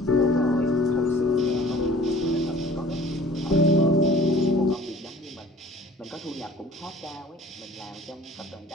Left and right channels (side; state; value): both; normal; correlation 0.50